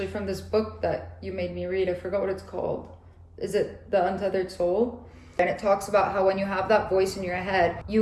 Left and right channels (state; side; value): identical; both; correlation 1.00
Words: from this book that you made me read, I forgot what it's called. Is it The Untethered Soul? And it talks about how when you have that voice in your head,